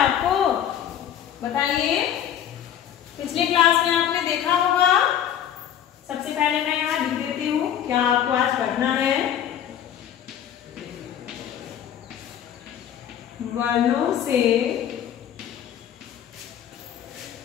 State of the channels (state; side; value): quieter; right; 9.9 dB